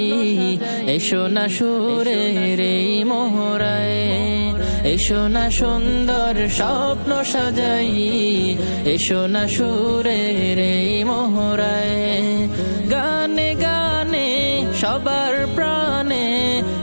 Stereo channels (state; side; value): inverted; both; correlation -1.00